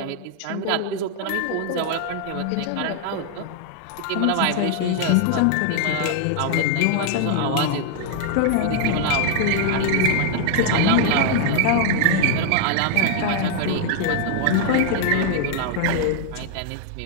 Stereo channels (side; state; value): both; different; correlation 0.00